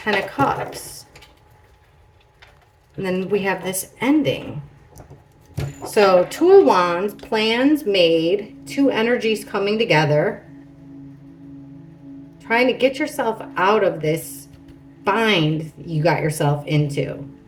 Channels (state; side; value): identical; both; correlation 1.00